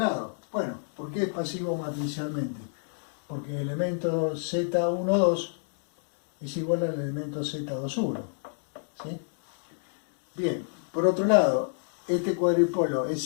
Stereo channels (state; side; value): silent; right; digital silence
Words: Bueno, ¿por qué es pasivo matricialmente? Porque el elemento Z12 es igual al elemento Z21. ¿Sí? Bien, por otro lado, este cuadripolo es